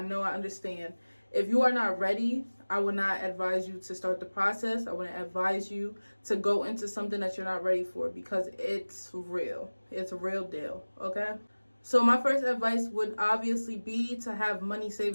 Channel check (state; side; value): inverted; both; correlation -1.00